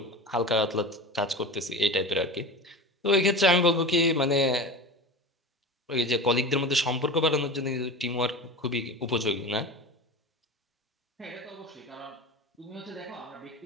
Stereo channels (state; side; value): normal; both; correlation 0.31